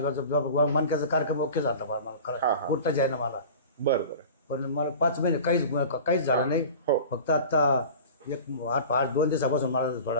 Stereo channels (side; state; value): both; inverted; correlation -0.37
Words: मनक्याचा कार्यक्रम ओके झाला मला हा, हा. उठताच आहे ना मला. बरं बरं. पण मला 5 महिने काहीच झालं नाही. हो. फक्त आता 2 दिवसापासून मला